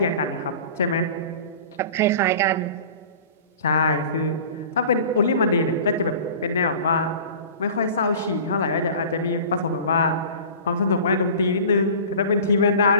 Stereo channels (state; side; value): inverted; both; correlation -0.40